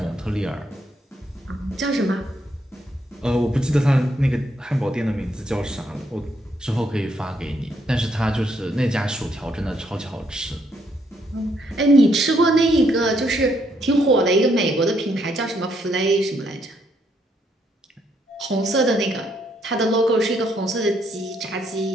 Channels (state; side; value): normal; both; correlation 0.73